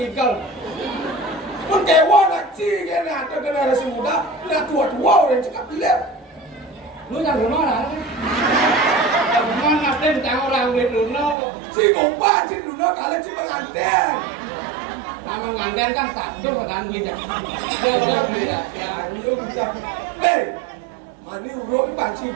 Pun kayak uang kecil kan ada generasi muda, udah tua-tua orang cakap lihat. Lu yang mana? Yang mana tang orang beli duno. Si kompan si duno kalian si pengantin. Nama nganten kan status kan beli dah. Dia beli dah. Ya, ayo bisa. Mani urut panci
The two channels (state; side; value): drops out; left; at 11.4 s